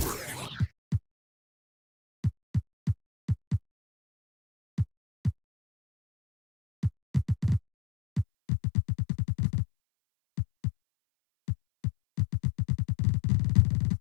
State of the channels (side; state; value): right; drops out; at 8.2 s